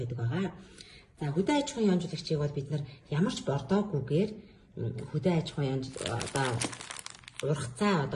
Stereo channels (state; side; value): identical; both; correlation 1.00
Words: байгаа. За хөдөө аж ахуйн ионжуулагчийг бол бид нар ямар ч бордоогүйгээр хөдөө аж ахуйн